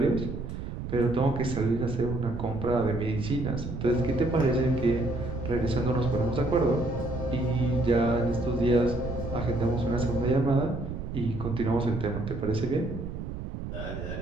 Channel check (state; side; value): noise; right; rumble, 7 dB below the sound